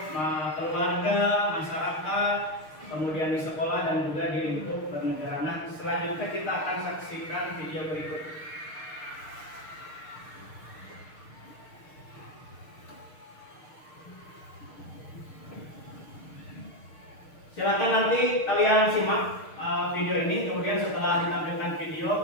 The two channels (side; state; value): right; late; 6.5 ms